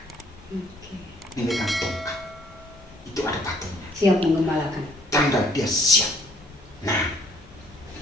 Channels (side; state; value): both; normal; correlation 0.62